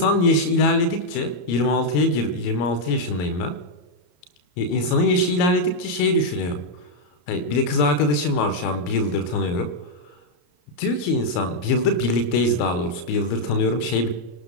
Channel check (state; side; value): late; right; 33 ms